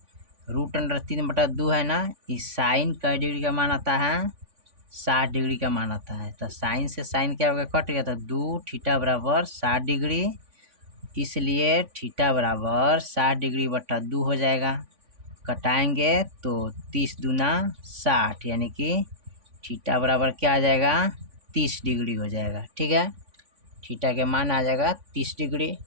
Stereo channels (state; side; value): late; left; 3.5 ms